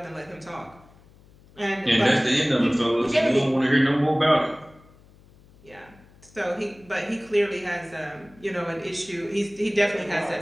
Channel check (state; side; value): noise; left; hum, 26 dB below the sound